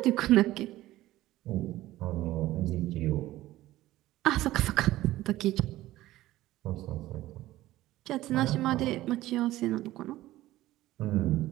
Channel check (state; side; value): quieter; left; 16.0 dB